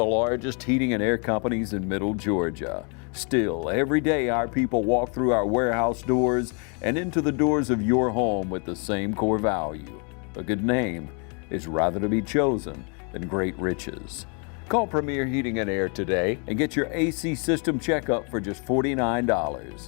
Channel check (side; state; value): right; quieter; 37.1 dB